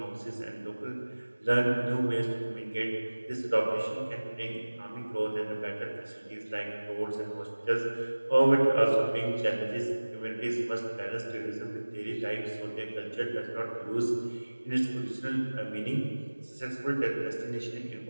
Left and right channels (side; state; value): both; inverted; correlation -1.00